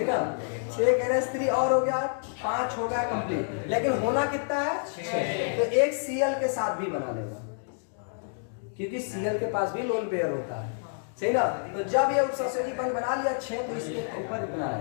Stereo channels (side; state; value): right; silent; digital silence